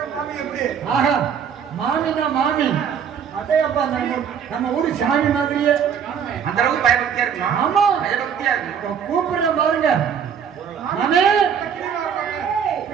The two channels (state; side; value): quieter; left; 7.6 dB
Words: ஆஹா மாமினா மாமி அதையப்பா நம்ம ஊரு சாமி மாதிரியே அந்த அளவுக்கு பயபக்தியா இருக்குமா? ஆமா பயபக்தியா இருக்கு. கூப்பிடுறேன் பாருங்க. மாமே